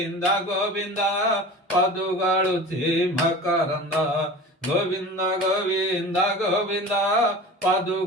गोविंद पदुगळुची मकरंद गोविंद गोविंद गोविंद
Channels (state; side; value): normal; both; correlation 0.36